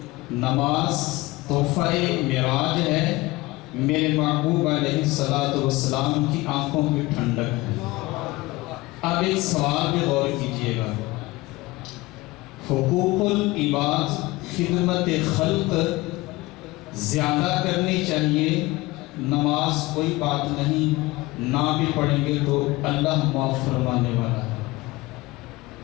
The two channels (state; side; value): quieter; right; 20.8 dB